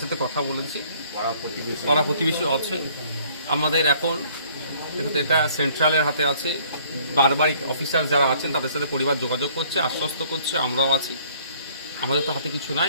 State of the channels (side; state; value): both; inverted; correlation -0.59